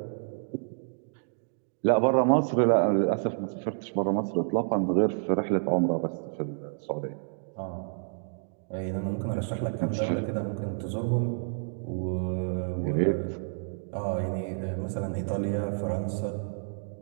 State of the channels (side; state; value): left; silent; digital silence